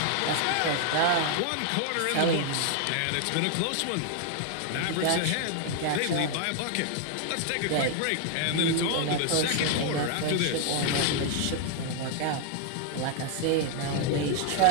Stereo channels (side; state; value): both; different; correlation 0.00